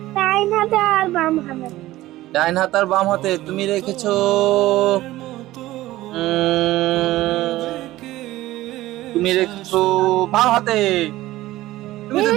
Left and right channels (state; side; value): quieter; left; 16.5 dB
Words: ডাইন হাতে আর বাম হাতে। ডাইন হাত আর বাম হাতে তুমি রেখেছো। তুমি রেখেছো বাম হাতে। তুমি তো